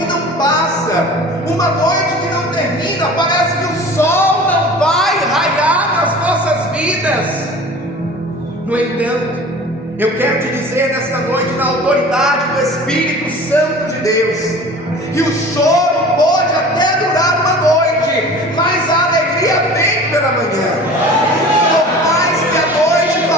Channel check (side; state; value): both; normal; correlation 0.41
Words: não passa, uma noite que não termina. Parece que o sol não vai raiar nas nossas vidas. No entanto, eu quero te dizer nesta noite, na autoridade do Espírito Santo de Deus, que o choro pode até durar uma noite, mas a alegria vem pela manhã. Por mais que a noite